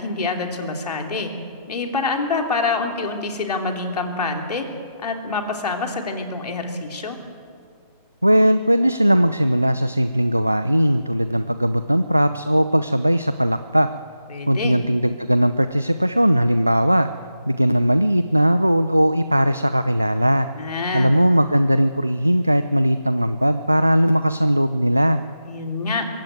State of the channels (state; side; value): inverted; both; correlation -0.89